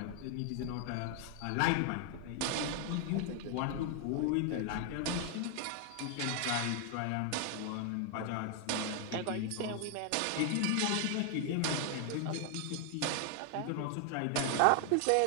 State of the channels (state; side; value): different; both; correlation 0.00